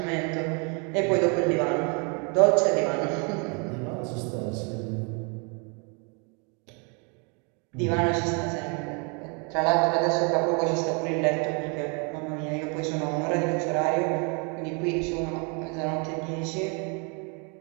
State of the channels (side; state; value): left; quieter; 34.8 dB